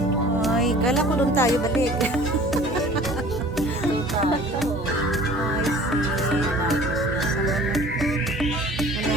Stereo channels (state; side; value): normal; both; correlation 0.47